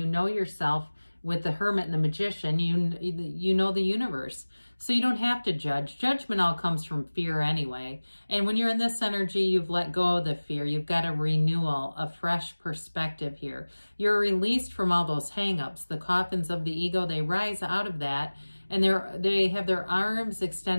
know yourself with the Hermit and the Magician, you know the universe. So you don't have to judge. Judgment all comes from fear anyway. And when you're in this energy, you've let go of the fear. You've got a renewal, a fresh perspective here. You're released from all those hang-ups. The coffins of the ego, they rise out of that, and they have their arms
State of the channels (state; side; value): inverted; both; correlation -1.00